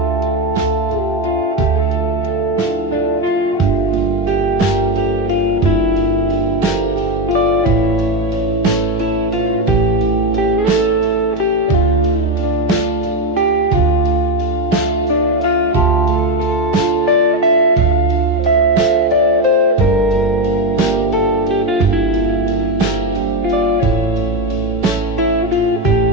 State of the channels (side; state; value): both; normal; correlation 0.12